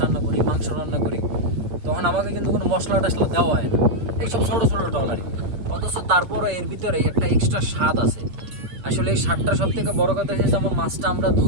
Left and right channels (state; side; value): late; left; 8.4 ms